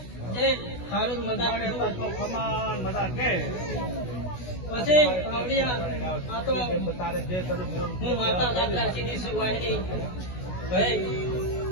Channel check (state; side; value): late; right; 16 ms